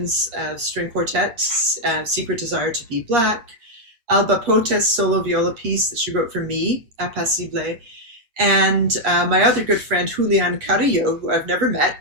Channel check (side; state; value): left; late; 8.6 ms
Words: string quartet, Secret Desire to Be Black, Alba Potes' solo viola piece that she wrote for me, Apacible, and my other good friend, Julian Carrillo, who I've never met